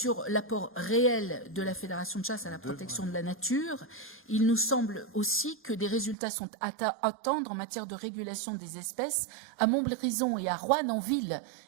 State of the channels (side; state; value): left; drops out; at 6.2 s